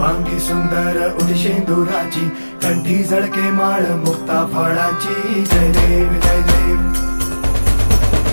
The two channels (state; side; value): inverted; both; correlation -1.00